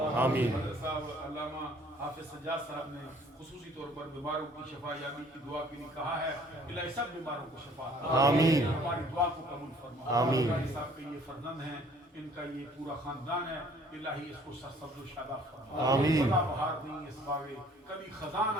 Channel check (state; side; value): normal; both; correlation 0.57